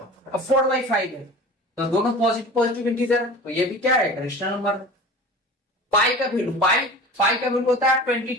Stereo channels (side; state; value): both; normal; correlation 0.38